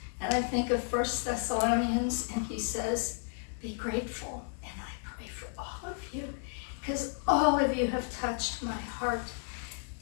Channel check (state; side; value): silent; right; 56 dB below the other